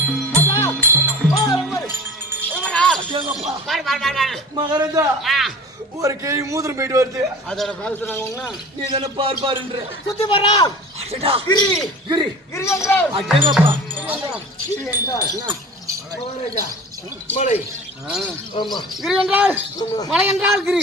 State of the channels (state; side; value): normal; both; correlation 0.39